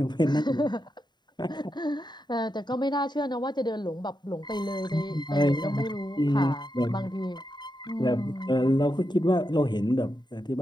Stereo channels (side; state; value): right; late; 0.21 ms